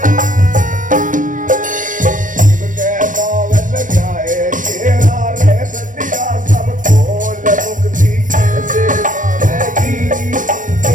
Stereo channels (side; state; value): left; late; 0.38 ms